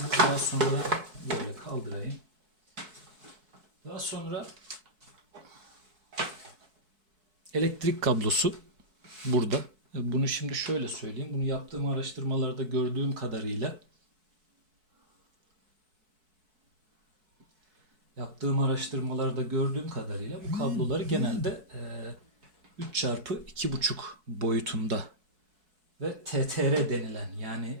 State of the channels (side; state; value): left; late; 4.6 ms